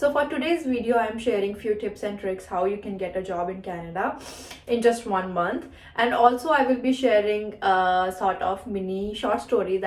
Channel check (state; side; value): identical; both; correlation 1.00